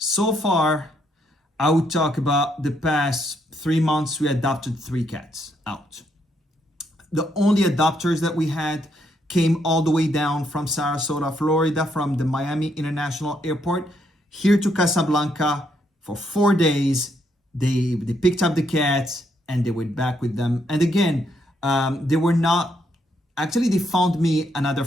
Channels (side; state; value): both; normal; correlation 0.75